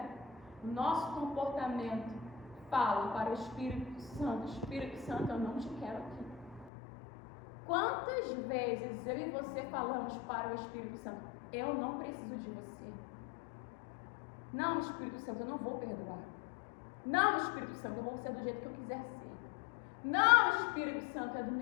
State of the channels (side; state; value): right; drops out; at 6.7 s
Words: O nosso comportamento fala para o Espírito Santo: Espírito Santo, eu não te quero aqui. Quantas vezes eu e você falamos para o Espírito Santo: eu não preciso de você. Não, Espírito Santo, eu não vou perdoar. Não, Espírito Santo, eu vou ser do jeito que eu quiser ser. Não, Espírito Santo, é do